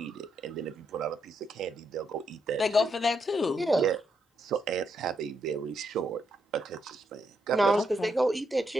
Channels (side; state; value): both; normal; correlation 0.79